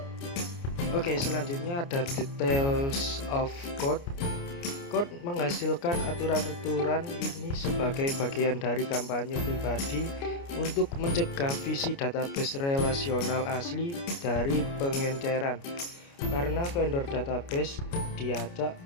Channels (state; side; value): late; right; 29 ms